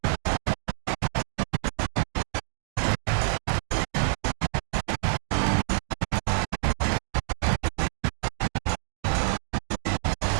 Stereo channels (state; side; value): silent; left; digital silence